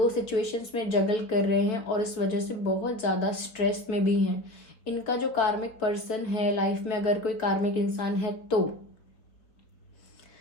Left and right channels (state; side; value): late; right; 4.0 ms